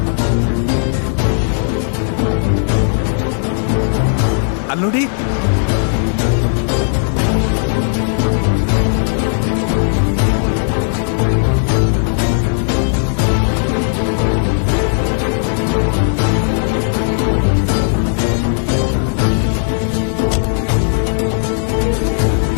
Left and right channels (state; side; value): silent; right; digital silence